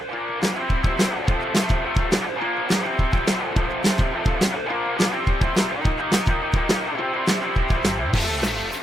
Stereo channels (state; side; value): normal; both; correlation 0.85